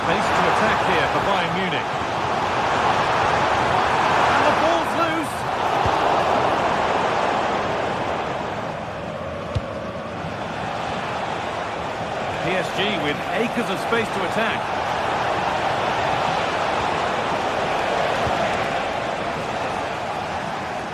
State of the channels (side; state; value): both; identical; correlation 1.00